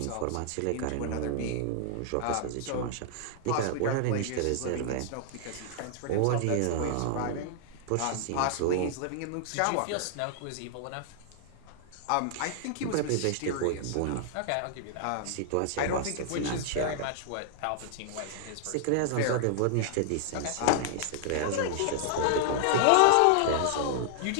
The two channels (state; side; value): different; both; correlation -0.01